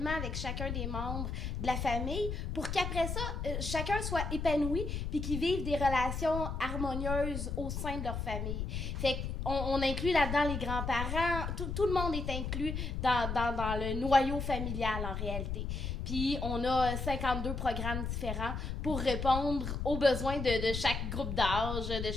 avec chacun des membres de la famille pour qu'après ça, chacun soit épanoui puis qu'ils vivent des relations harmonieuses au sein de leur famille. Fait on inclut là-dedans les grands-parents. Tout le monde est inclus dans le noyau familial, en réalité. Puis, on a 52 programmes différents pour répondre aux besoins de chaque groupe d'âge, de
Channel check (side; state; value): left; noise; rumble, 3 dB below the sound